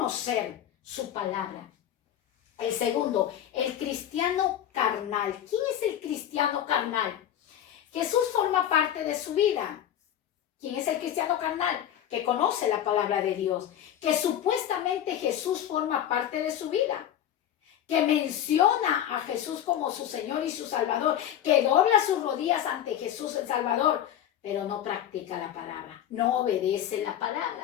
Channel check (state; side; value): quieter; right; 10.8 dB